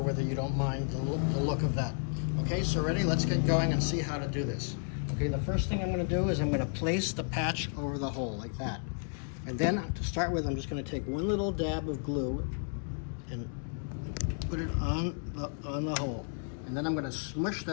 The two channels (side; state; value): right; silent; 56 dB below the other